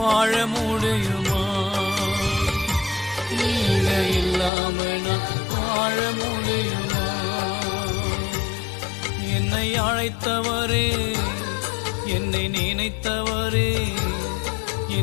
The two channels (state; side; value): drops out; right; at 4.5 s